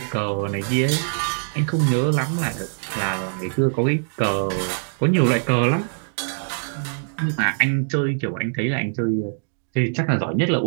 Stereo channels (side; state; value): left; silent; digital silence